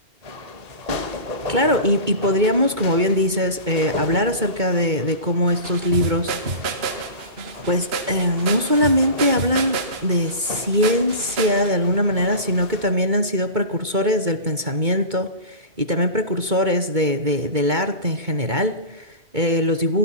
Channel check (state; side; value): late; left; 2.2 ms